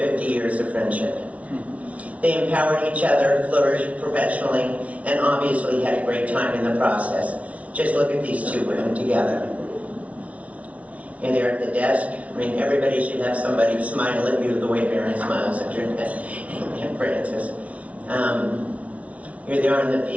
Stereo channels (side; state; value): left; late; 0.066 ms